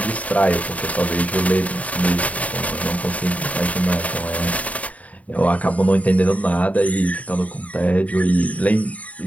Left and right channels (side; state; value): right; late; 0.070 ms